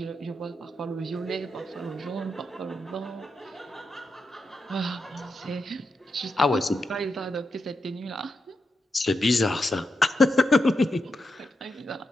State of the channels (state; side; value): normal; both; correlation 0.86